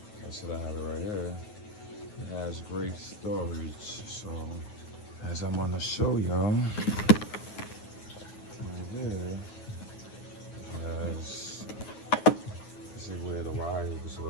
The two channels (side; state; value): right; late; 9.4 ms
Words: I said I have it right here. It has great storage. So as I'm gonna show y'all,